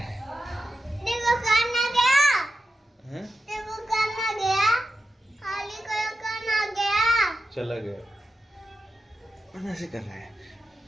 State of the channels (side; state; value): both; normal; correlation 0.90